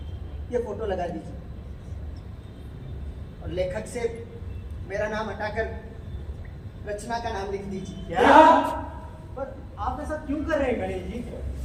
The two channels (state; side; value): identical; both; correlation 1.00